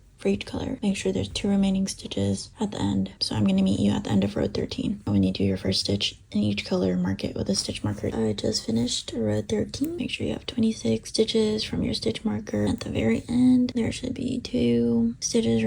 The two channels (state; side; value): identical; both; correlation 1.00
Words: for each color. Make sure there's 2 remaining stitches at the end. So I'm going to meet you at the end of row 13. When you do your first stitch in each color, mark it with a stitch marker. I just finished row 13. Make sure you have 26 stitches from your stitch marker. At the very end, there should be 2 stitches